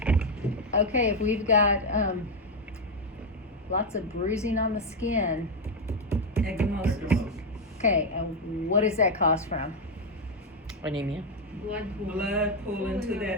Okay, if we've got lots of bruising on the skin, Ecchymosis. okay, and what does that cause from? Anemia. Blood pooling to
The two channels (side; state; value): both; normal; correlation 0.05